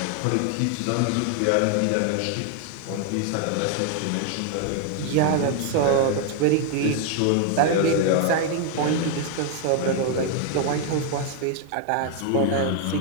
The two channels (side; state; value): both; different; correlation 0.00